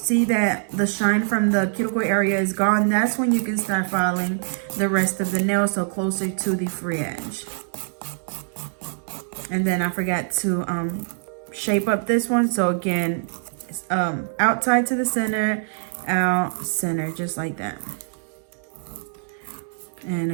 that the shine from the cuticle area is gone, that's when you can start filing the rest of the nail, so closer to the free edge. And then I forgot to shape up this one. So again, outside to the center, out center, just like that. And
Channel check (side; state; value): left; silent; digital silence